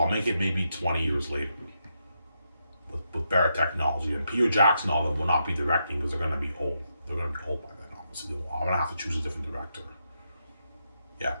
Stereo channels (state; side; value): inverted; both; correlation -0.82